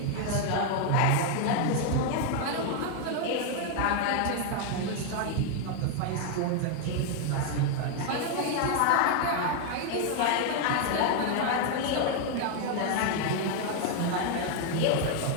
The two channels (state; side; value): different; both; correlation 0.01